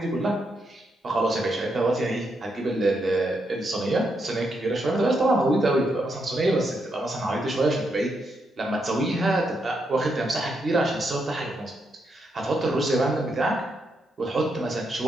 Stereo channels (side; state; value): both; normal; correlation 0.81